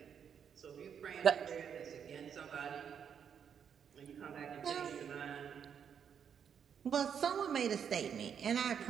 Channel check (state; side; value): quieter; left; 7.8 dB